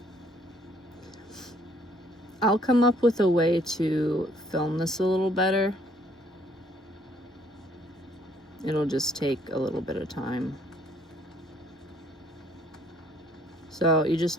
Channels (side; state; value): both; normal; correlation 0.63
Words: I'll come up with a way to film this a little better. It'll just take a little bit of time. So you just